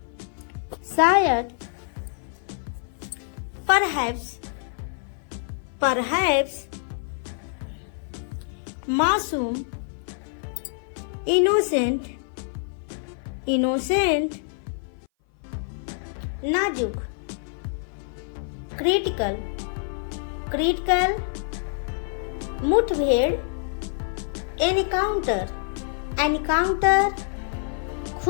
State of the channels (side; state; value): right; silent; 57 dB below the other